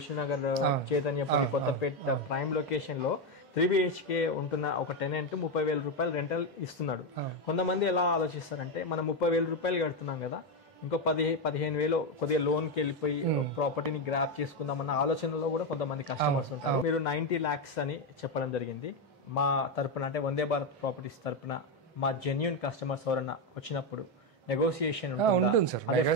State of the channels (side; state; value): both; normal; correlation 0.08